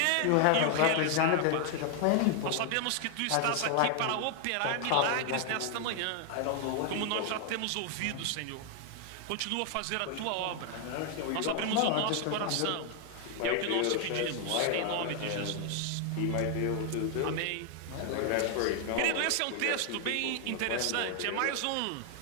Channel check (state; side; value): different; both; correlation 0.00